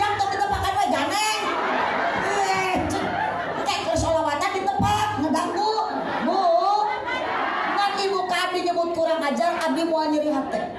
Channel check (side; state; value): both; identical; correlation 1.00